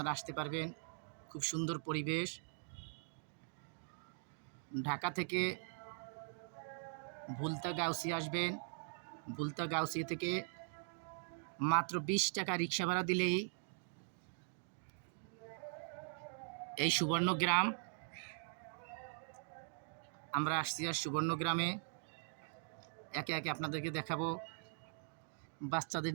আসতে পারবেন। খুব সুন্দর পরিবেশ। ঢাকা থেকে ভুলতা গাউসিয়া আসবেন। ভুলতা গাউসিয়া থেকে মাত্র 20 টাকা রিক্সা ভাড়া দিলেই এই সুবর্ণগ্রাম। আমরা আসছি আর সুবর্ণগ্রামে একে একে আপনাদেরকে দেখাবো। বাচ্চাদের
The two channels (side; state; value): left; silent; digital silence